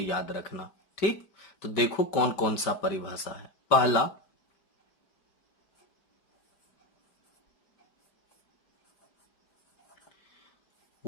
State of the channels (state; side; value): late; right; 5.2 ms